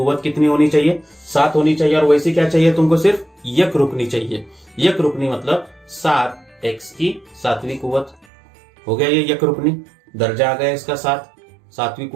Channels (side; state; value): left; drops out; at 8.2 s